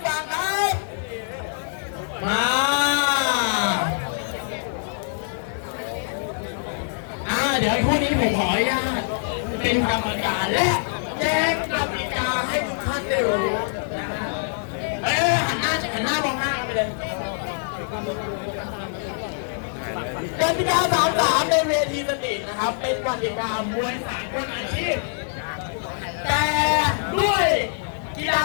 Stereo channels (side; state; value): right; silent; digital silence